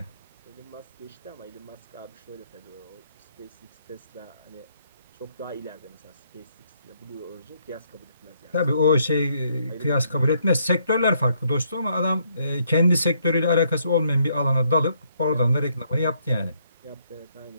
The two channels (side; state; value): both; inverted; correlation -0.71